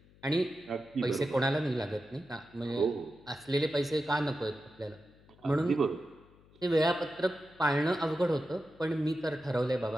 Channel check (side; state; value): left; noise; hum, 27 dB below the sound